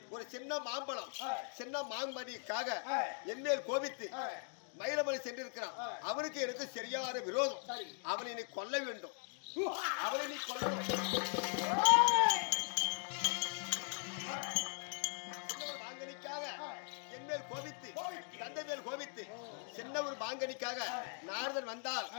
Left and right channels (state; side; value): silent; right; 51 dB below the other